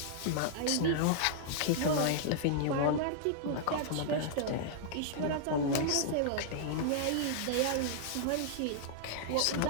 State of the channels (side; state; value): both; different; correlation -0.01